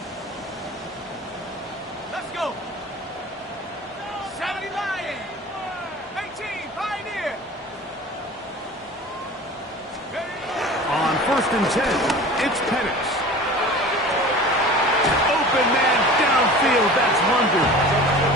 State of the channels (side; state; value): both; normal; correlation 0.39